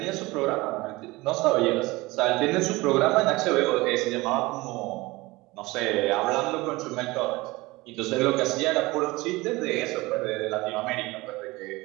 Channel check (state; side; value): quieter; left; 21.5 dB